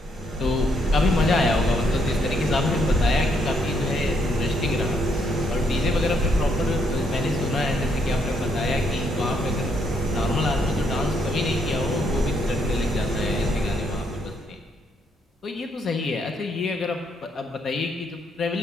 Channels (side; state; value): both; normal; correlation 0.73